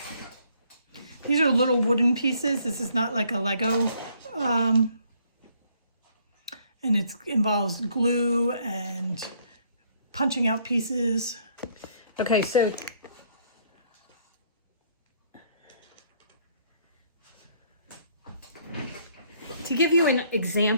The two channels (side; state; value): both; inverted; correlation -0.65